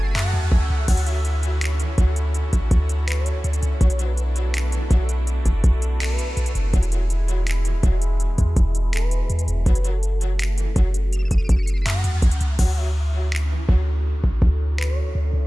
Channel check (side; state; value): both; normal; correlation 0.97